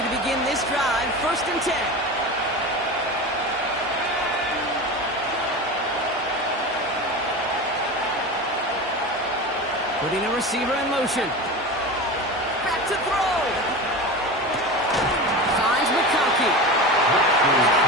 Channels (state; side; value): normal; both; correlation 0.28